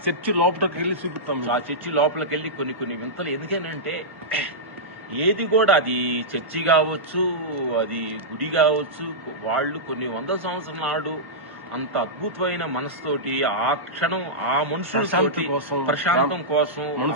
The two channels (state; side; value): late; left; 1.1 ms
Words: చర్చి లోపలికి వెళ్ళి చూపిస్తాం. ఆ చర్చి లోపలికి వెళ్ళి కొన్ని వింతలు. ఎందుకనంటే ఏది కూడా అది చర్చి కావచ్చు, అది గుడి కావచ్చు, వాళ్ళు కొన్ని 100 సంవత్సరాల నాడు అంత అద్భుతమైన మనసుతోటి ఆ క్షణం ఆ మనుషుల ప్రశాంతం కోసం,